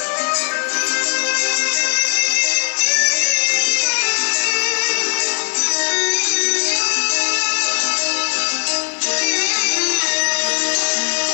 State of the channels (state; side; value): silent; right; 64 dB below the other